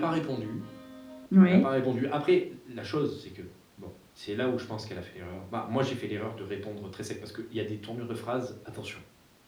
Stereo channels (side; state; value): both; identical; correlation 1.00